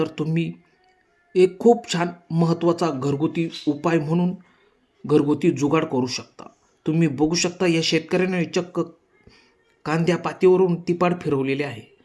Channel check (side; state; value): both; identical; correlation 1.00